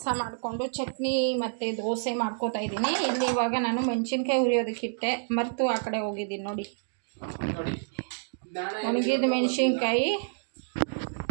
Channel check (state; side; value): silent; left; digital silence